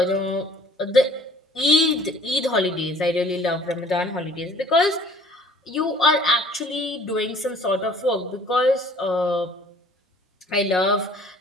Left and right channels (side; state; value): both; normal; correlation 0.54